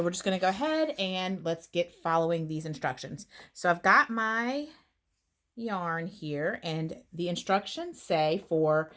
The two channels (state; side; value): identical; both; correlation 1.00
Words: we're just going to go ahead and let's get following these instructions. So I've got my yarn here, and the instructions say for